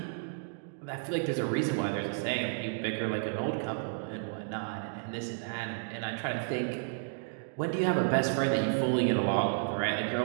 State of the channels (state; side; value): silent; left; digital silence